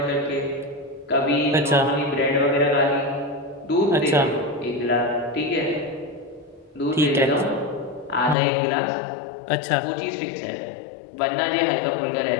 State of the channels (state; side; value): drops out; right; at 8.3 s